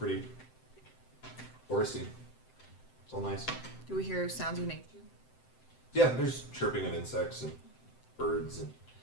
foresty. It's all nice. Do we hear sounds of nature? Yeah, there's chirping of insects and birds and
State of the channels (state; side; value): late; right; 7.8 ms